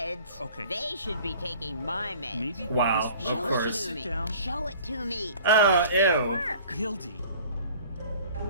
Okay. They should be taking my meds. Maybe. Wow, Show of course. It to Sit me. down. Show it to me. Oh, ew. Hildy.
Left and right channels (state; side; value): inverted; both; correlation -0.48